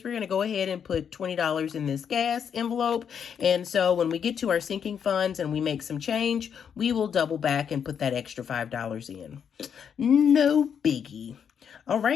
we're going to go ahead and put $20 in this gas envelope. And so when we get to our sinking funds and we make some change, we will double back and put that extra $5 in. No biggie. All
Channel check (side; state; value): right; quieter; 7.7 dB